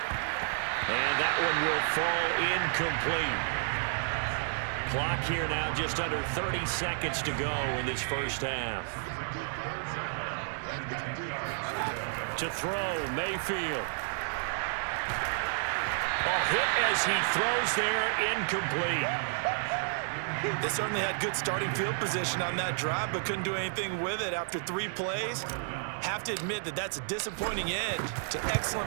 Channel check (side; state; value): left; silent; digital silence